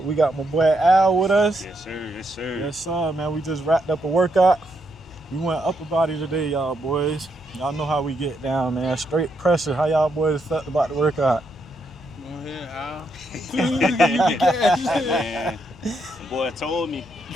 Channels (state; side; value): noise; left; hum, 25 dB below the sound